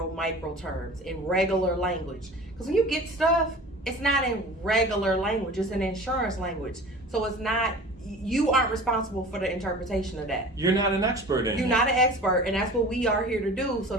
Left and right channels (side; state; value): both; normal; correlation 0.40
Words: terms, in regular language. Because when you get stuff, it's not in regular language, it's in insurance language. So it's not, you aren't responsible for the interpretation of that. You're not an expert in it. You're not an expert, and that's what we are here to do. So